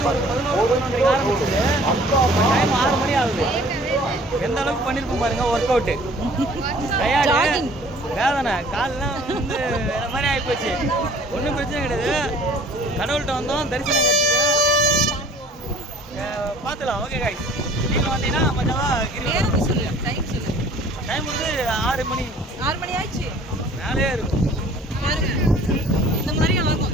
டைம் 6 மணி ஆகுது. எந்த அளவுக்கு பண்ணிருப்போம் பாருங்க ஒர்க் அவுட்டு. டயர்டு வேதனை காலெல்லாம் வந்து வேற மாதிரி ஆகிப்போச்சு. ஒன்றும் பிரச்சனை கிடையாது. கடவுள்கிட்ட வந்தோம், தரிசனம் கிடைச்சிது, பார்த்துலாம். ஓகே காய், நீங்கள் வந்தீங்கன்னா மஜாவா நேரம் சொல்லு, டைம் சொல்லு. டைம் வந்து 6 மணி. 6 மணி ஆயிடுச்சு. மேலே இருக்கும் பாருங்க, இந்த மாதிரி ஆகும்.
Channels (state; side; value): normal; both; correlation 0.52